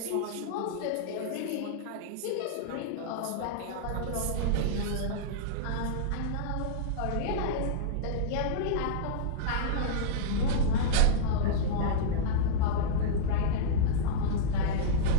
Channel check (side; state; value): both; different; correlation -0.03